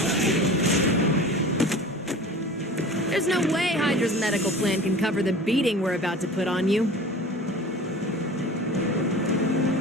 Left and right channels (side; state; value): both; normal; correlation 0.39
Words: There's no way Hydra's medical plan can cover the beating we're about to put on you.